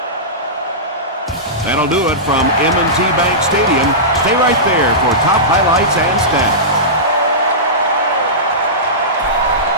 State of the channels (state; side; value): normal; both; correlation -0.17